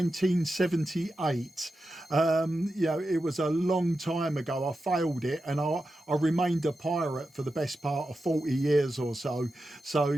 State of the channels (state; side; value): normal; both; correlation 0.90